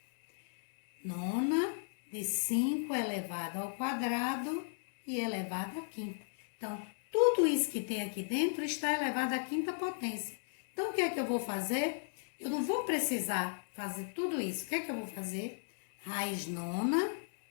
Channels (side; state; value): right; silent; digital silence